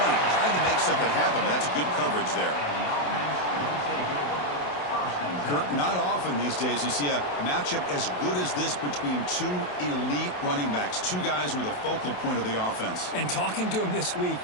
Tried to make something happen, but that's good coverage there. Kurt, not often these days you see a matchup as good as this between two elite running backs, two guys who are the focal point of the offense. And talking to them this week,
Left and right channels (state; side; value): late; right; 28 ms